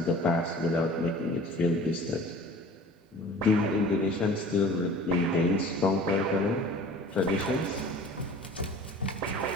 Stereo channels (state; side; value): normal; both; correlation 0.45